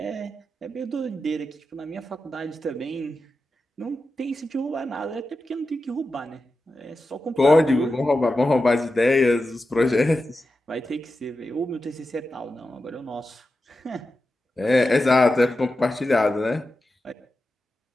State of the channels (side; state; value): both; normal; correlation 0.91